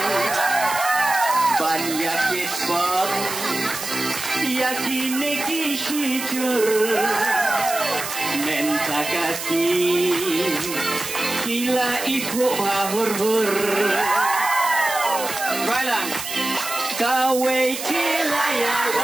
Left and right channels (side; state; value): right; noise; hiss, 7 dB below the sound